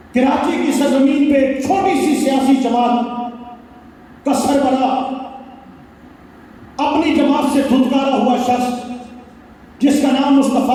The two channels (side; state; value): both; identical; correlation 1.00